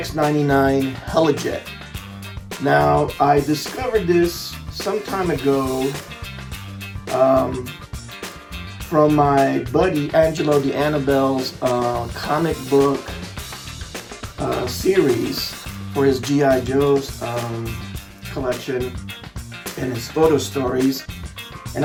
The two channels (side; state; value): both; identical; correlation 1.00